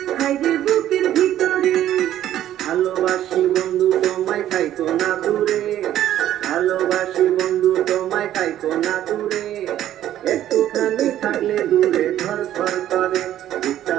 হায়রে বুকের ভিতরে। ভালোবাসি বন্ধু তোমায় থাইকো না দূরে, ভালোবাসি বন্ধু তোমায় থাইকো না দূরে, একটুখানি থাকলে দূরে ধর ধর করে, বুকটা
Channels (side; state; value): left; quieter; 12.2 dB